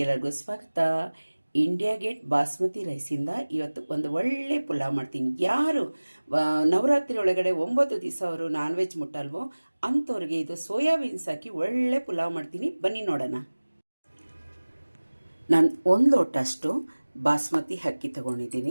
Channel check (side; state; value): both; inverted; correlation -1.00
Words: ಸ್ವಾಗತ. ಇಂಡಿಯಾ ಗೇಟ್ ಬಾಸ್ಮತಿ ರೈಸಿಂದ ಇವತ್ತು ಒಂದು ಒಳ್ಳೆ ಪುಲಾವ್ ಮಾಡ್ತೀನಿ. ಯಾರು ನವರಾತ್ರಿ ಒಳಗಡೆ 9 ದಿವಸ ಅವರು ನಾನ್ ವೆಜ್ ಮುಟ್ಟಲ್ವೋ ಅಂಥವ್ರಿಗೆ ಇದು ಸೋಯಾಬೀನ್ಸ್ ಹಾಕಿ ಒಳ್ಳೆ ಪುಲಾವ್ ಮಾಡ್ತೀನಿ. ಬನ್ನಿ ನೋಡೋಣ. ನಾನು 1 ಲೋಟ ಅಷ್ಟು ಬಾಸ್ಮತಿ ಅಕ್ಕಿ